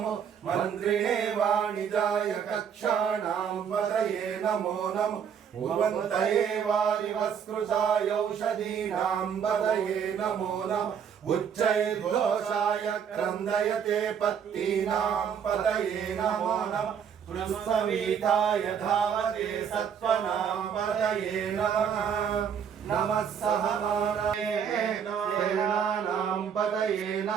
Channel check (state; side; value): quieter; left; 7.7 dB